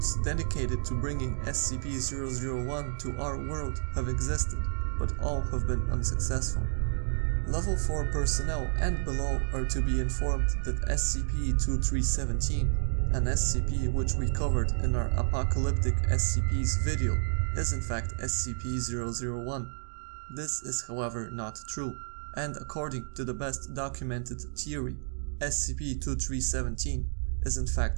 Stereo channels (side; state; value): left; silent; digital silence